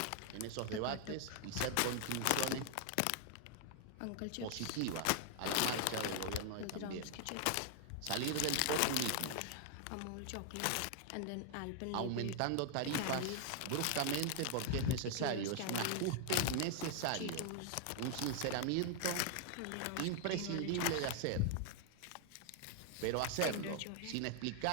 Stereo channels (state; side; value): different; both; correlation 0.00